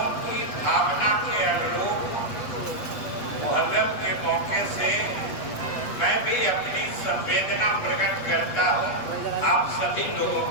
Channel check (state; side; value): late; right; 8.3 ms